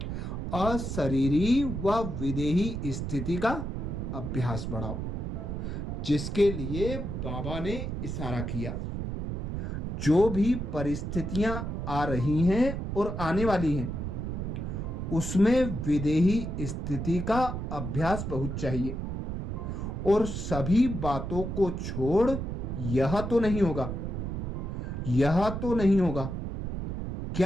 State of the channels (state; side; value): noise; right; rumble, 4 dB below the sound